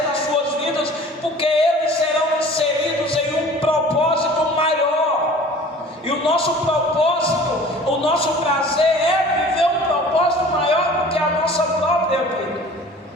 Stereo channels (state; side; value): normal; both; correlation 0.45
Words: nas suas vidas, porque eles serão inseridos em um propósito maior. E o nosso propósito, o nosso prazer é viver um propósito maior do que a nossa própria vida.